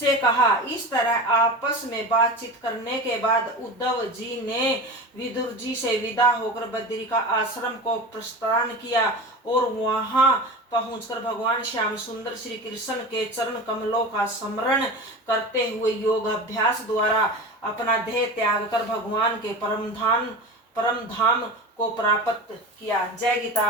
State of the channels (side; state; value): both; normal; correlation 0.30